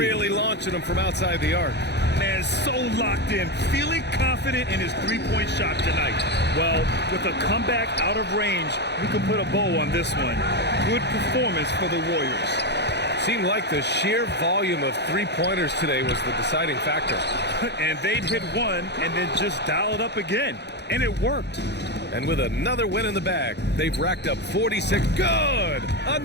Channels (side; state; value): right; late; 0.50 ms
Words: launching them from outside the arc. Man, so locked in, feeling confident in his three-point shot tonight. Well, with a comeback out of range, we can put a bow on this one. Good performance for the Warriors. Seemed like the sheer volume of three-pointers today was the deciding factor. And they'd hit one and then just dial it up again. And it worked. And with another win in the bag, they've racked up 46. Good!